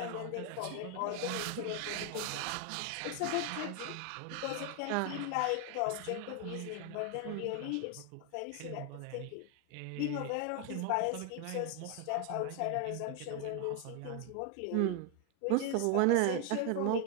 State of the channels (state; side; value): different; both; correlation 0.01